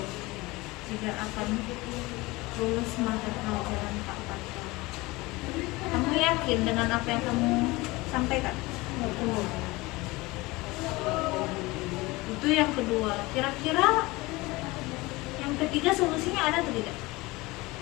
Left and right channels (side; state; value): right; quieter; 22.0 dB